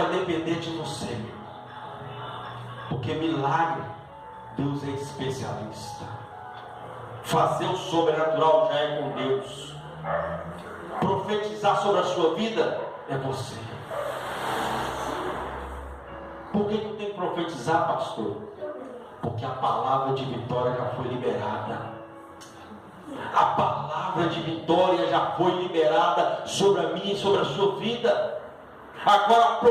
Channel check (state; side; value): identical; both; correlation 1.00